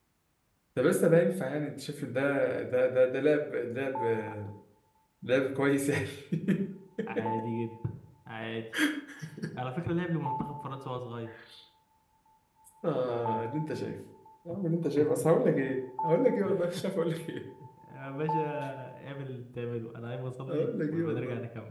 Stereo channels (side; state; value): both; identical; correlation 1.00